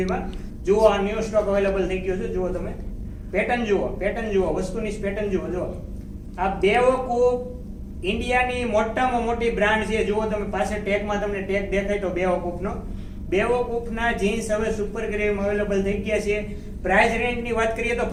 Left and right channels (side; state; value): both; identical; correlation 1.00